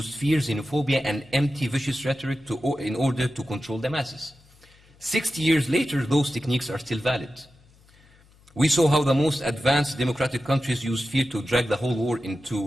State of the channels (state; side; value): noise; left; hum, 29 dB below the sound